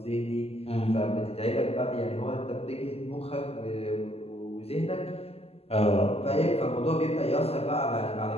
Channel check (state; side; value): late; right; 0.29 ms